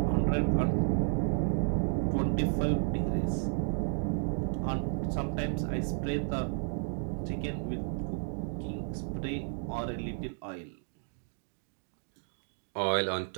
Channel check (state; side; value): silent; left; 56 dB below the other